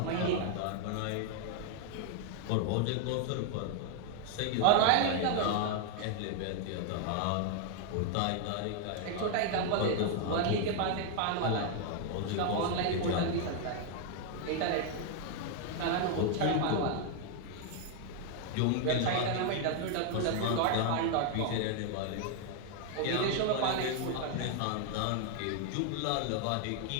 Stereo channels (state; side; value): different; both; correlation 0.00